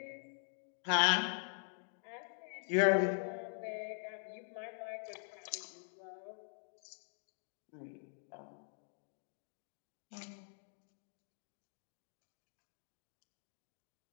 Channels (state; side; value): silent; right; digital silence